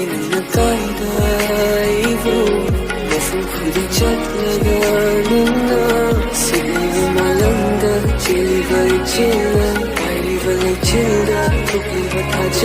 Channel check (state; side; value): identical; both; correlation 1.00